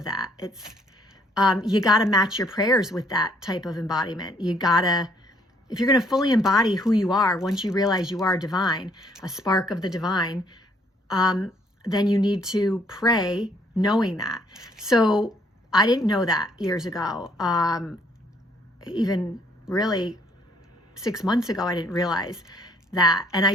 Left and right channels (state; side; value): normal; both; correlation 0.65